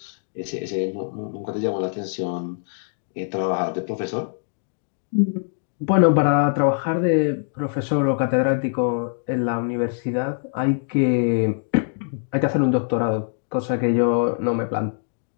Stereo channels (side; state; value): right; silent; digital silence